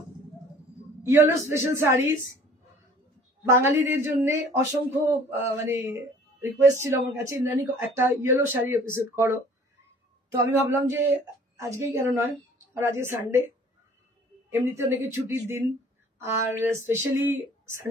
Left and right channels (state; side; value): normal; both; correlation 0.51